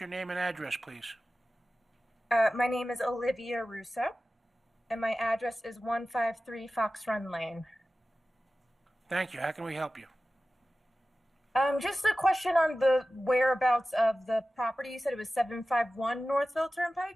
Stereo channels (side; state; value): both; normal; correlation 0.95